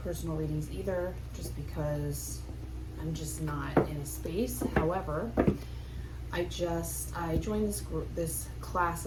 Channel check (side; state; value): both; identical; correlation 1.00